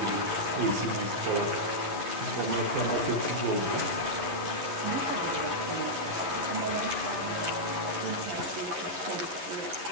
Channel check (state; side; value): late; left; 11 ms